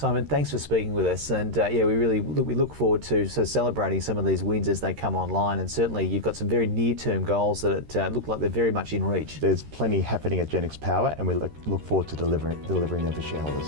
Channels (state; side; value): late; left; 13 ms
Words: thanks for speaking with us, and we look forward to celebrating some of these wins as they come online, and certainly you've got some very near-term goals that look like they're very much in reach. There's plenty happening at Genex Power, and we look forward to delivering them for